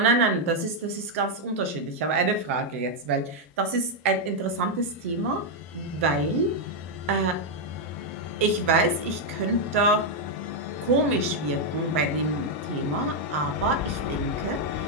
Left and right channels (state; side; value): normal; both; correlation 0.00